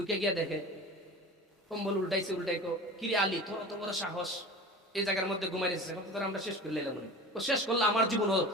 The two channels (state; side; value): normal; both; correlation 0.35